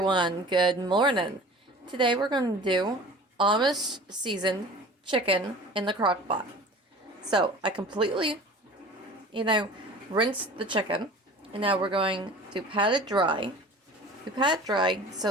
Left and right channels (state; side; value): normal; both; correlation 0.42